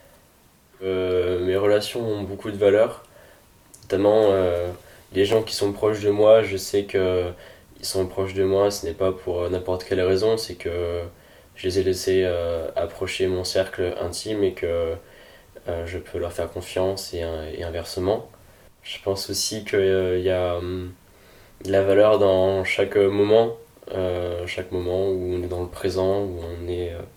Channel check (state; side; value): identical; both; correlation 1.00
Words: Mes relations ont beaucoup de valeur. Notamment, les gens qui sont proches de moi, je sais que ils sont proches de moi, ce n'est pas pour n'importe quelle raison, c'est que je les ai laissés approcher mon cercle intime et que je peux leur faire confiance et inversement. Je pense aussi qu'il y a de la valeur dans chaque moment où on est dans le présent, où on est